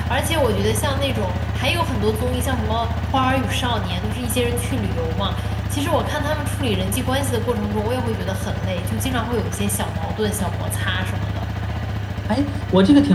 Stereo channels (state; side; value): identical; both; correlation 1.00